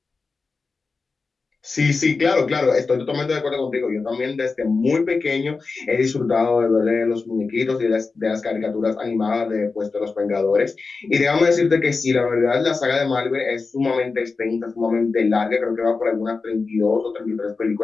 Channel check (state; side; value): quieter; right; 4.3 dB